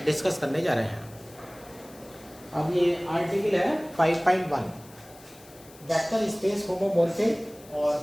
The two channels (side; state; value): left; noise; hiss, 23 dB below the sound